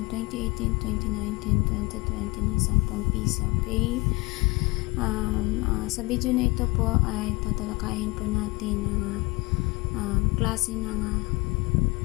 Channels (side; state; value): right; quieter; 24.7 dB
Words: 2018, 2019, 2020 ng 10 piso. Okay? Sa video na ito po ay tatalakayin po natin ang klase ng